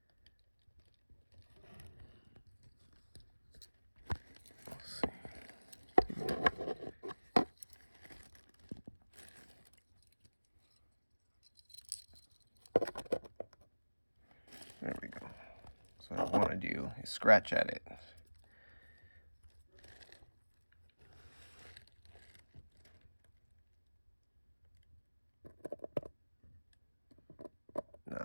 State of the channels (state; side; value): inverted; both; correlation -1.00